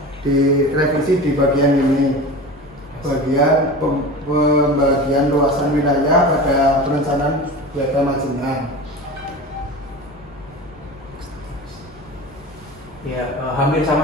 direvisi di bagian ini, bagian pembagian luasan wilayah pada perencanaan wilayah Majenang. Ya, hampir sama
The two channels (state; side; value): normal; both; correlation 0.32